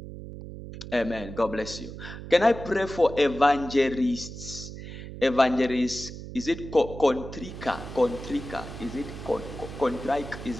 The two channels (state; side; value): noise; right; hum, 11 dB below the sound